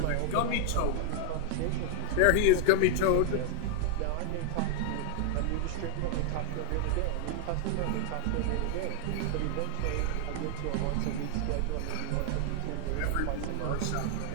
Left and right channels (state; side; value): different; both; correlation 0.01